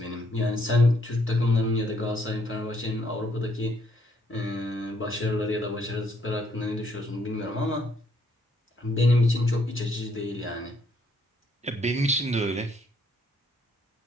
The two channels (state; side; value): normal; both; correlation 0.69